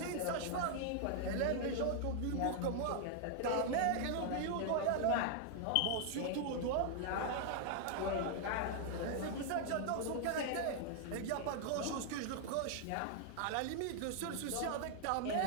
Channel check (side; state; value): both; different; correlation 0.00